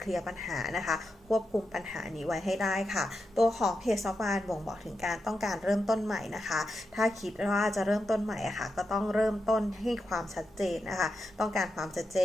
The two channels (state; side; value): normal; both; correlation 0.87